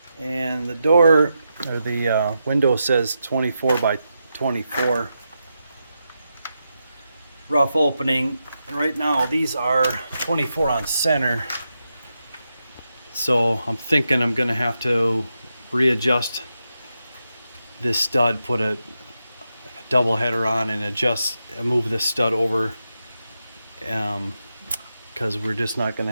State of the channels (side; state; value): both; inverted; correlation -0.87